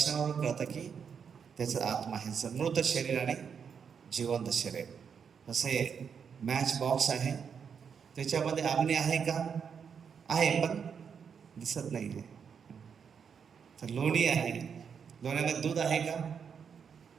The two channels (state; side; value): quieter; left; 6.8 dB